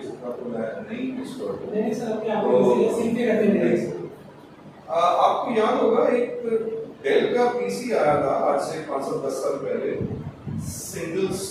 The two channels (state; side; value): identical; both; correlation 1.00